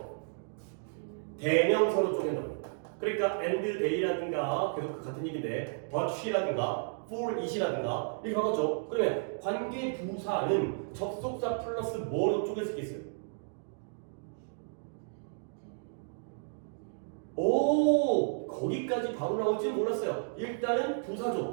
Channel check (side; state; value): left; silent; digital silence